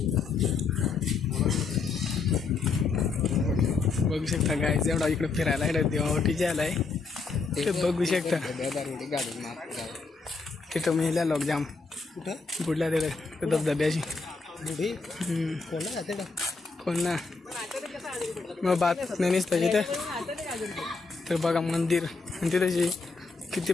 बघू शकता गाईज. एवढा इकडे फिरायला इकडे देवावटी जायला आहे ते बघू शकता. तिथं महिला लोक जाम बुडल्या तिकडे धबधब्याची. कोण ना मग बात नाही नसतं तिथे. तर बघा मंदिर आणि तिथे किती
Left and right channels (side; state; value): right; quieter; 4.4 dB